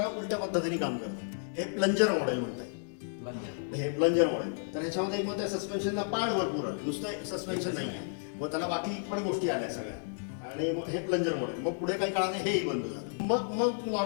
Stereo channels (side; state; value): right; silent; digital silence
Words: उलट्या पद्धतीने काम करतं. हे प्लंजर मॉडेल म्हणतात. हे प्लंजर मॉडेल. तर ह्याच्यामध्ये मग त्या सस्पेन्शनला पार्ट भरपूर आले, नुसतं सस्पेन्शन नाही आहे, मग त्याला बाकी पण गोष्टी आल्या सगळ्या. आणि मग हे प्लंजर मॉडेल. मग पुढे काही काळाने हेही बंद झालं. मग